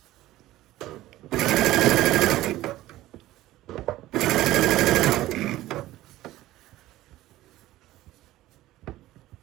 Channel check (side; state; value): left; quieter; 15.9 dB